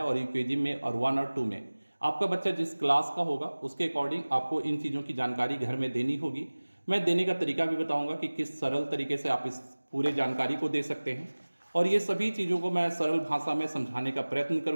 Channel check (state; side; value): inverted; both; correlation -1.00